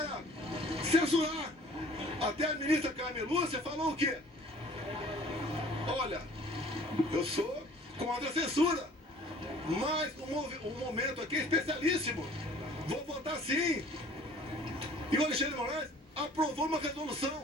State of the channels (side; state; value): both; normal; correlation 0.51